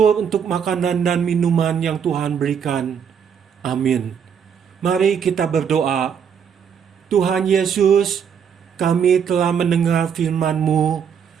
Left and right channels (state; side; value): quieter; left; 7.5 dB